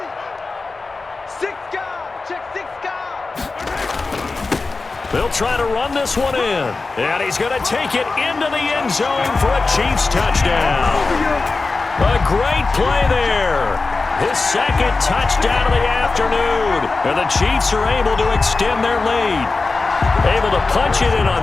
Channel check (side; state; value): right; quieter; 3.8 dB